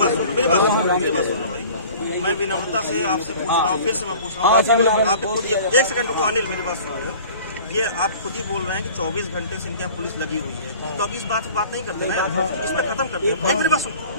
सुन लो भाई। मैं विनम्रता से आपसे पूछ रहा हूँ, फिर से मैं पूछ रहा हूँ, आप खुद एक सेकंड को अनिल मेरी बात सुन रहे हो। ये आप खुद ही बोल रहे हैं कि 24 घंटे से इनके यहाँ पुलिस लगी हुई है, तो अब इस बात नहीं करते ना, इस पे खत्म करते हैं। मेरी बात सुन,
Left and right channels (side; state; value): both; inverted; correlation -0.45